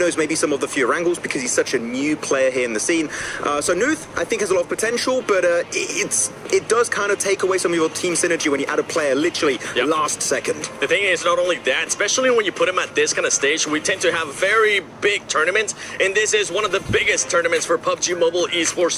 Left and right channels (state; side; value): identical; both; correlation 1.00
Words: maybe some of the fewer angles because he's such a new player here in the scene. So Nuth, I think, has a lot of potential, but it does kind of take away some of your team synergy when you add a player literally last second. The thing is, not only that, especially when you put him at this kind of stage, we tend to have very big tournaments, and this is one of the biggest tournaments for PUBG Mobile